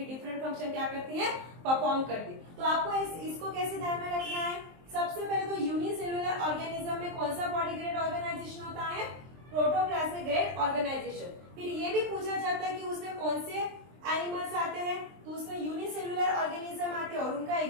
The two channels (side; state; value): left; late; 23 ms